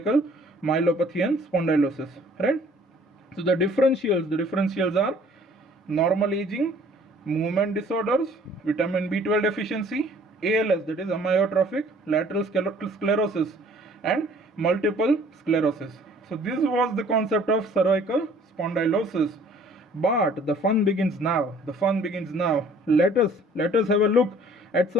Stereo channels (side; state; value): both; normal; correlation 0.55